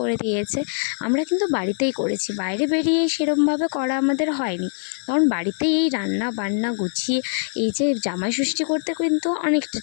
দিয়েছে। আমরা কিন্তু বাড়িতেই করেছি, বাইরে বেরিয়ে সেরমভাবে করা আমাদের হয়নি, কারণ বাড়িতেই এই রান্না বান্না গুছিয়ে এই যে জামাই ষষ্ঠী করতে কিন্তু অনেকটা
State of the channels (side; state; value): right; silent; 64 dB below the other